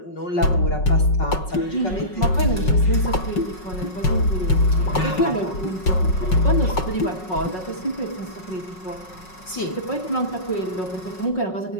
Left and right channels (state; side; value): late; right; 5.4 ms